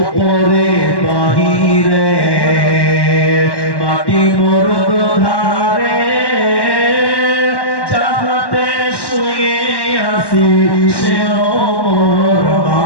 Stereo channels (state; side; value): late; right; 1.1 ms